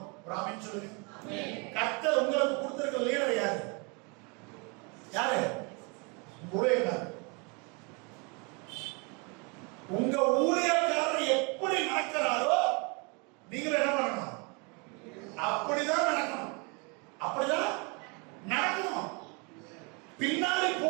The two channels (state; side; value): quieter; left; 31.6 dB